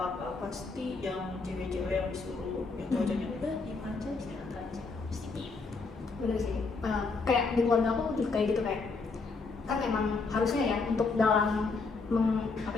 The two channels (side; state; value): right; quieter; 4.2 dB